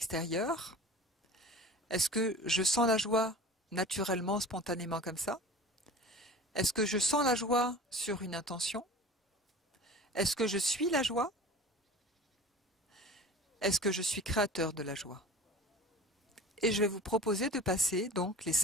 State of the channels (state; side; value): normal; both; correlation 0.39